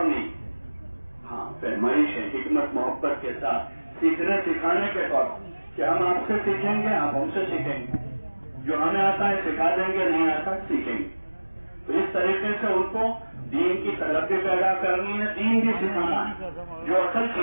نہیں، ہاں پیمائش ہے، حکمت محبت کے ساتھ سیکھنے سکھانے کے طور پر کہ ہم آپ سے سیکھیں گے، آپ ہم سے سیکھیں گے، جو ہمیں آتا ہے سکھا دیں گے، نہیں آتا سیکھیں گے۔ تو اس طریقے سے ان کو دین کی طلب بھی پیدا کرنی ہے، دین بھی سکھانا ہے جو اصل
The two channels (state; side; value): inverted; both; correlation -1.00